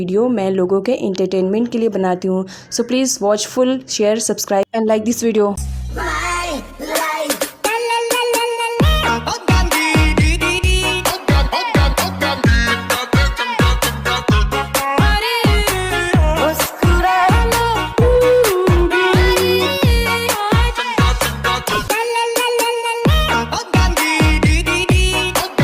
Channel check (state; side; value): identical; both; correlation 1.00